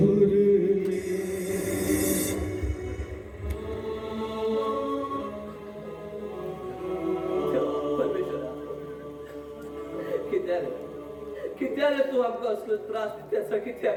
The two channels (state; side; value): identical; both; correlation 1.00